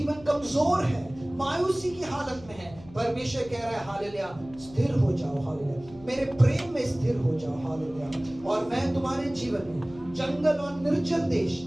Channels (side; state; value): left; noise; hum, 20 dB below the sound